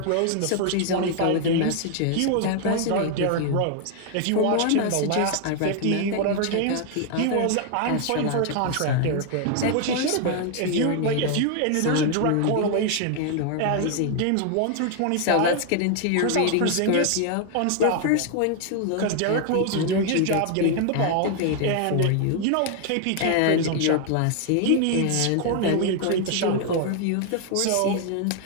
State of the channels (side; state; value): both; different; correlation 0.00